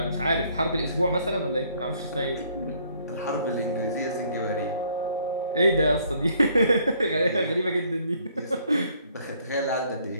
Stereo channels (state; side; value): inverted; both; correlation -0.64